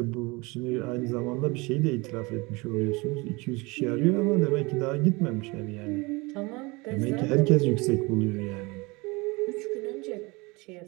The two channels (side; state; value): left; quieter; 25.4 dB